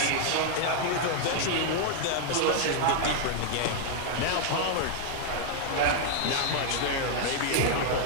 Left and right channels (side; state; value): both; different; correlation 0.00